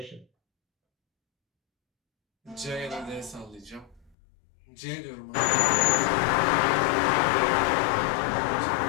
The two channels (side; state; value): right; drops out; at 4.2 s